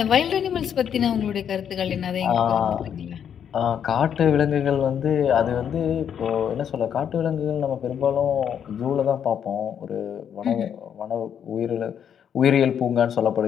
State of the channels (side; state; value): right; quieter; 8.5 dB